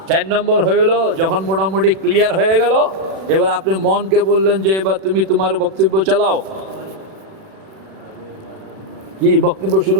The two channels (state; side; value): late; left; 36 ms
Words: 4 নম্বর হইল যখন মোটামুটি ক্লিয়ার হয়ে গেল, এবার আপনি মনকে বললেন যে এবার তুমি তোমার বক্তব্য চালাও। কি বক্তব্য শুরু